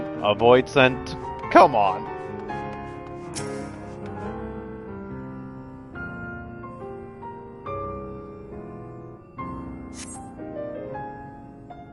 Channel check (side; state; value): both; identical; correlation 1.00